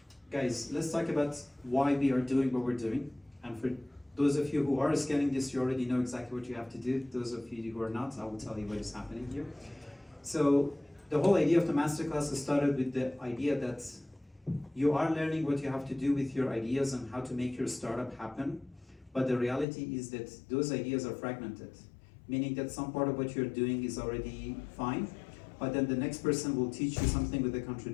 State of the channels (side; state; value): right; drops out; at 19.7 s